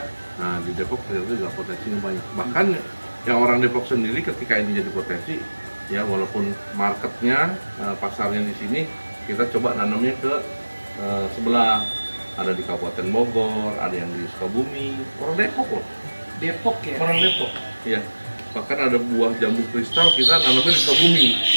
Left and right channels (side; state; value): both; inverted; correlation -1.00